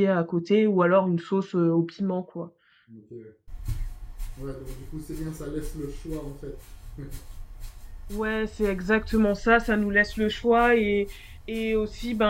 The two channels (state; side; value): identical; both; correlation 1.00